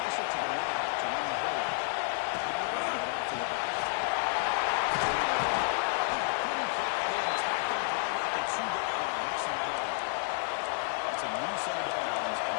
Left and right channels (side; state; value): right; silent; 57 dB below the other